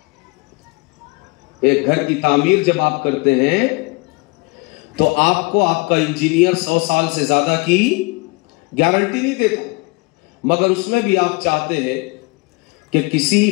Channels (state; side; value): quieter; right; 27.4 dB